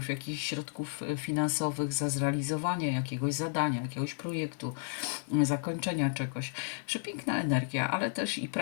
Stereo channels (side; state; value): right; silent; digital silence